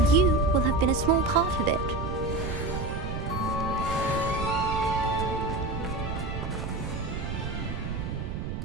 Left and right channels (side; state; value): right; noise; rumble, 5 dB below the sound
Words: you will have been a small part of it.